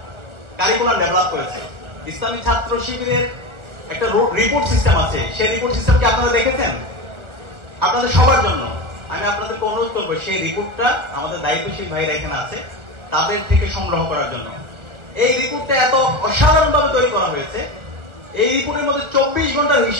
কারিকুলাম ডেভেলপ করেছে। ইসলামী ছাত্র শিবিরের একটা রিপোর্ট সিস্টেম আছে, সেই রিপোর্ট সিস্টেম কি আপনারা দেখেছেন? আপনাদের সবার জন্য আমি আপনাদেরকে অনুরোধ করবো সেই রিপোর্টটা আমাদের দায়িত্বশীল ভাইরা এখানে আছে তাদের থেকে সংগ্রহ করার জন্য। এই রিপোর্টটা এত অসাধারণ ভাবে তৈরি করা হয়েছে, এই রিপোর্টের মধ্যে 24 ঘন্টার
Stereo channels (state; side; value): late; left; 1.3 ms